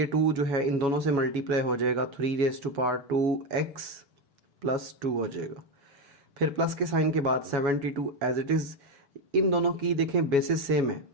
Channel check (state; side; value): late; left; 7.2 ms